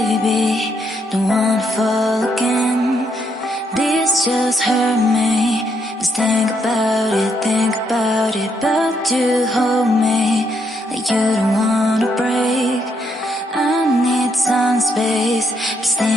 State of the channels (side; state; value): both; normal; correlation 0.75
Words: baby, don't wanna fall again. This just hurt me. Just think about it, but you hold me like you don't wanna break. I need some space, just